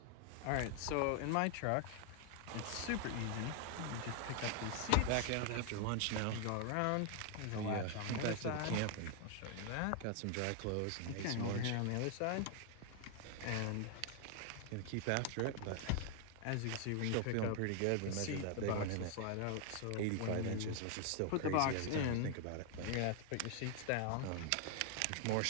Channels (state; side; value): different; both; correlation 0.00